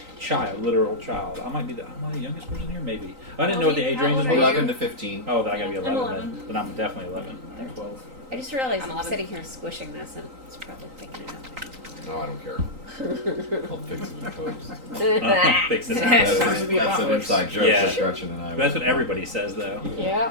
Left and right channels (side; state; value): left; late; 3.9 ms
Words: child, literal child, am I the youngest person here? Maybe. I didn't know what the age How range old was. are you? 11 to 15. Oh, then I gotta be I'm 11. 11. Then I'm definitely 11. I'm 12. I just realized I'm I'm 11. sitting here squishing this and it's probably picking it up. No, I don't care. I'll fix it in post. Fix it. That's, Sounds like the that's an apocalypse. inside joke Yeah. with Gretchen and I. That's what everybody says, though, Yeah.